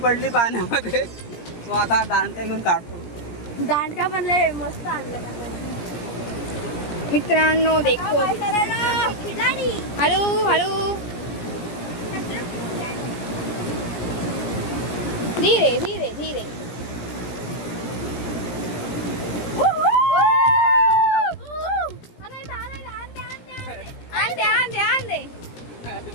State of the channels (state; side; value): late; right; 17 ms